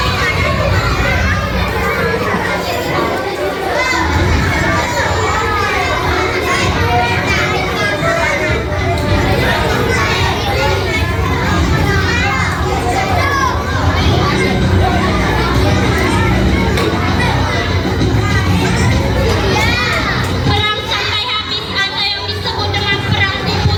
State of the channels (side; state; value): both; identical; correlation 1.00